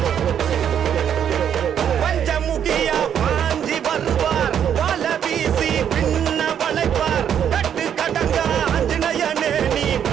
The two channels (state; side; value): quieter; left; 8.9 dB